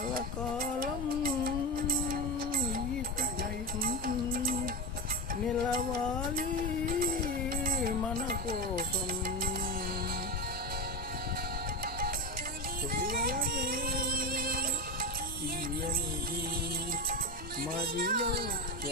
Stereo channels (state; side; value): normal; both; correlation 0.18